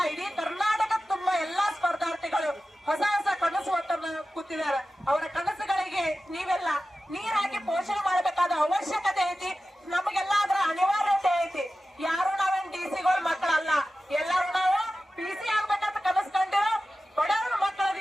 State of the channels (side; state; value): both; normal; correlation 0.94